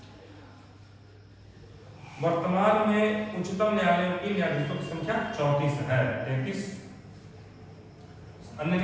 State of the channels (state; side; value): identical; both; correlation 1.00